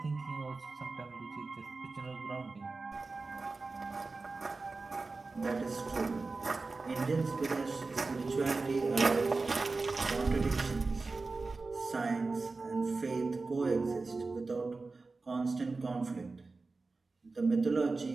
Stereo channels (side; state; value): left; quieter; 3.8 dB